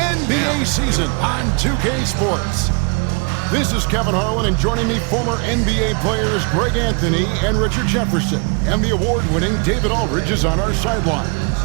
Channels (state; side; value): quieter; left; 34.4 dB